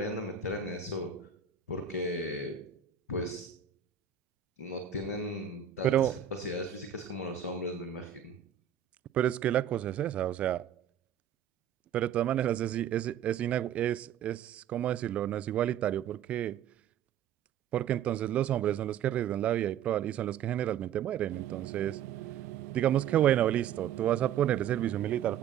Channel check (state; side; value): quieter; left; 9.0 dB